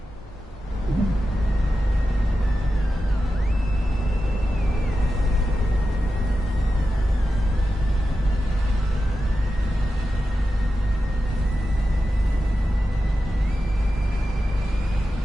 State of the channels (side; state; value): both; normal; correlation 0.91